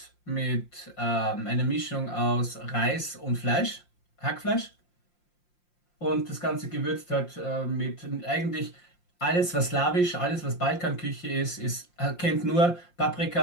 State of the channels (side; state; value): right; late; 5.7 ms